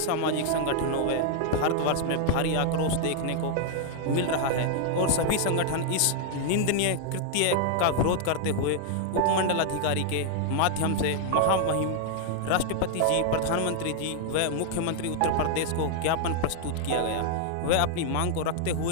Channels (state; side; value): different; both; correlation 0.00